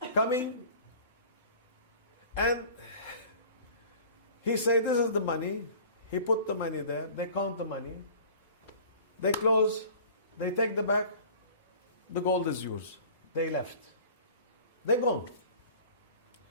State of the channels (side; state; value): both; inverted; correlation -0.44